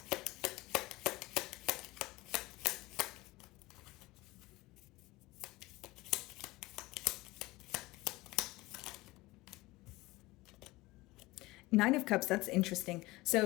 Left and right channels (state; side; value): quieter; right; 20.4 dB